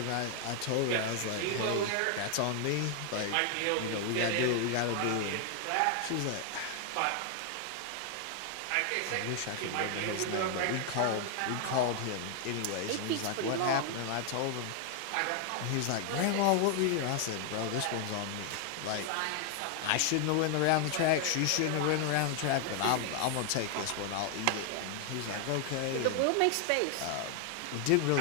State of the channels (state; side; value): different; both; correlation 0.00